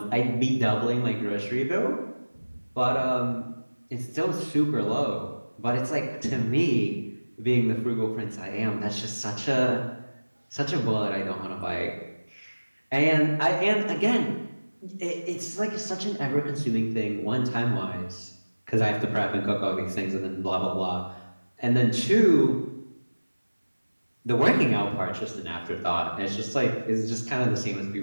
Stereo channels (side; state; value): both; inverted; correlation -1.00